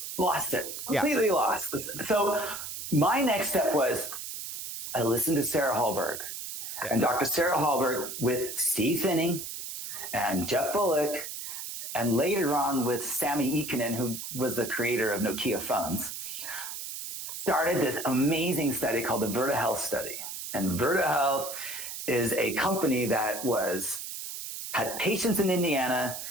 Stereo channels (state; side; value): noise; right; hiss, 7 dB below the sound